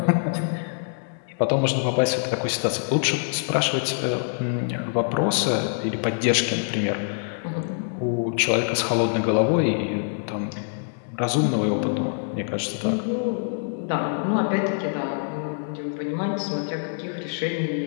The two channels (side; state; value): right; silent; digital silence